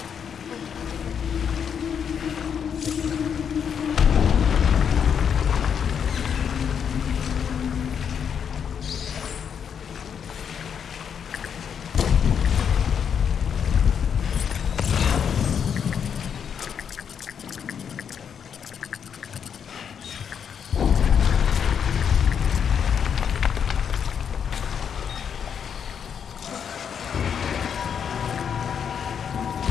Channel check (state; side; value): quieter; right; 7.6 dB